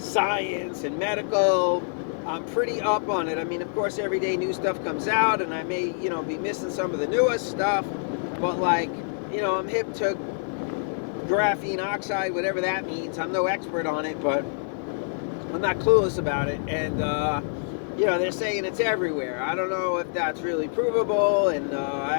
and medical. I'm pretty up on it. I mean, of course, every day new stuff comes out, and I may, be missing some of the newest stuff, but I'm hip to graphene oxide, whatever that means. I'm no expert on it, but I'm not clueless about it. And, they're saying it's everywhere. I don't know if that's really provable, and I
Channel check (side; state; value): right; silent; 57 dB below the other